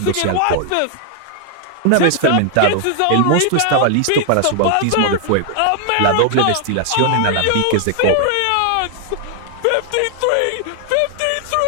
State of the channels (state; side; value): different; both; correlation 0.00